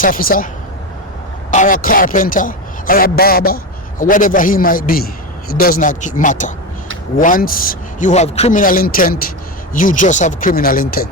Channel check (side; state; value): both; normal; correlation 0.16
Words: officer or a carpenter or a barber or whatever he might be. It does not matter. Once you have criminal intent, you just have criminal